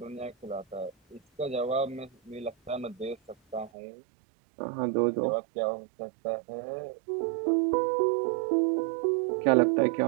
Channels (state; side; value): drops out; left; at 3.7 s